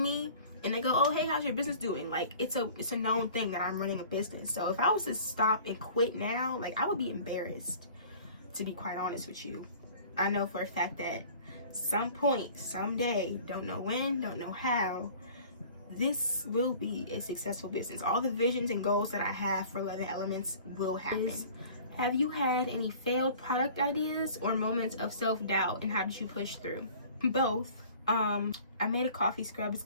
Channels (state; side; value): inverted; both; correlation -0.47